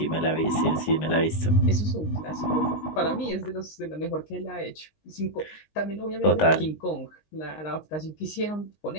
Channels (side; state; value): right; late; 19 ms